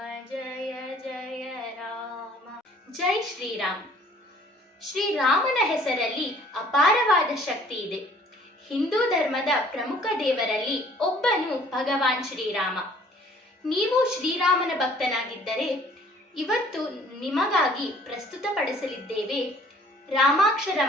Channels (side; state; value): both; normal; correlation 0.56